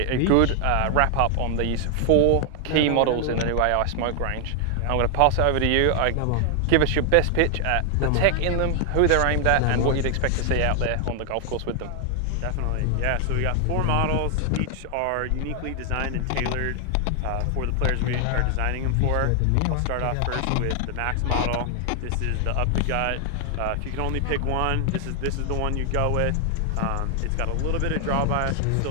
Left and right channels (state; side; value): different; both; correlation 0.00